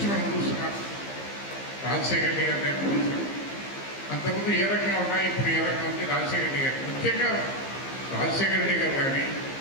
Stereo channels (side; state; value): right; late; 15 ms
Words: మనం చూస్తున్నాం. రాజశేఖర రెడ్డి గారి చూసాం, అంతకుముందు ఏ రకంగా ఉన్నాయి, ఇప్పుడు ఏ రకంగా ఉంది. రాజశేఖర రెడ్డి గారు ముఖ్యంగా రాజశేఖర రెడ్డి గారు కానీ